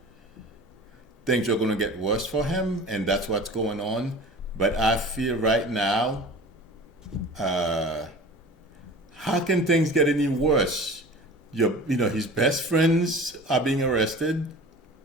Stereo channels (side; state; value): both; normal; correlation 0.39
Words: things are going to get worse for him, and that's what's going on. But I feel right now, how can things get any worse? His best friends are being arrested.